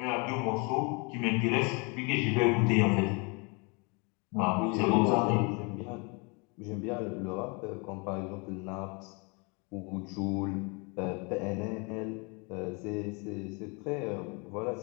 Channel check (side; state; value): right; quieter; 31.5 dB